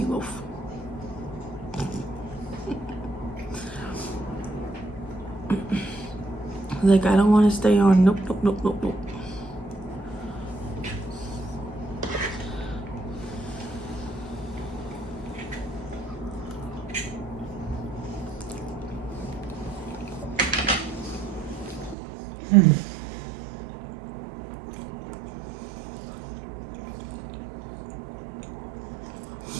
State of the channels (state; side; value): drops out; left; at 22.0 s